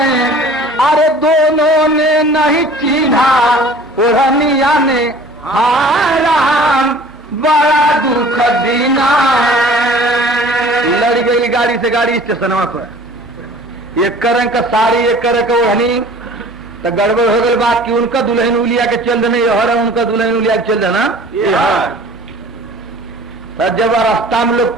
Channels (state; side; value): normal; both; correlation 0.47